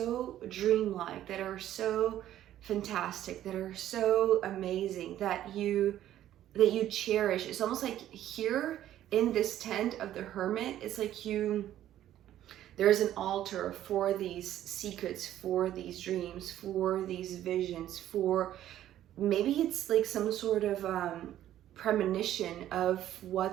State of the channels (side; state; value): left; quieter; 12.3 dB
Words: dreamlike, that are so fantastic, that are so amazing, that you cherish. It's almost like here in this tent of the Hermit, it's like there's an altar for these secrets, for these dreams, for these visions, for maybe it's like some sort of premonition of